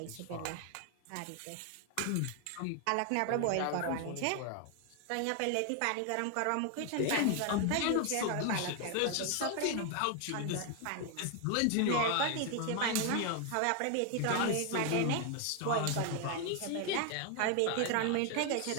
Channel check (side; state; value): both; different; correlation 0.01